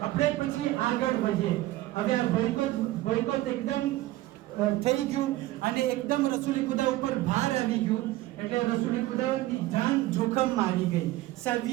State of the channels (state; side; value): quieter; left; 16.8 dB